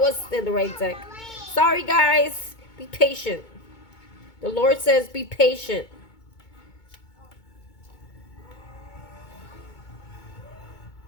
in the right deck. Sorry, guys. Be patient. The Lord says be patient.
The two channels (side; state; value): right; late; 2.2 ms